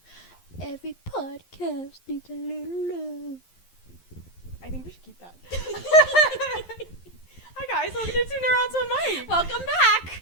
Every podcast needs a little love. I think we should keep that. Hi guys, welcome to Two Neurons on Mic. Welcome back.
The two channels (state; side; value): late; right; 11 ms